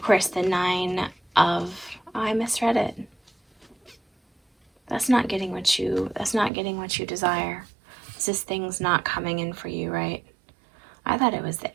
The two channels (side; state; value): left; drops out; at 6.5 s